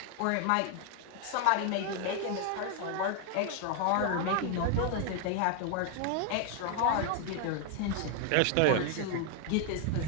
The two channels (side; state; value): both; different; correlation 0.01